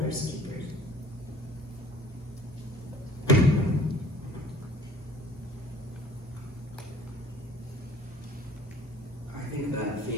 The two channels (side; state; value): both; normal; correlation 0.51